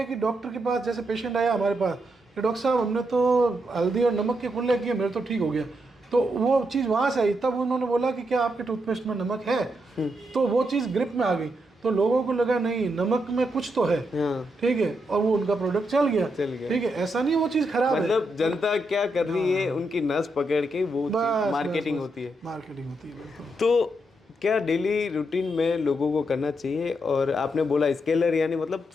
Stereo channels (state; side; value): normal; both; correlation 0.81